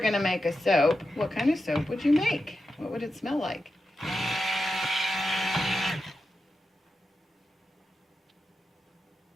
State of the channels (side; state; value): both; normal; correlation 0.89